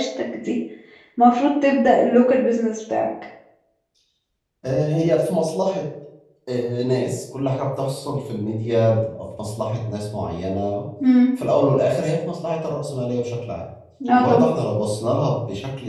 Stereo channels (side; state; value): both; identical; correlation 1.00